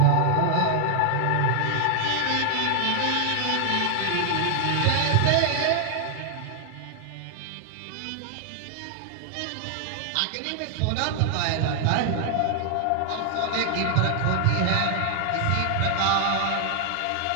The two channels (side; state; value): both; different; correlation 0.00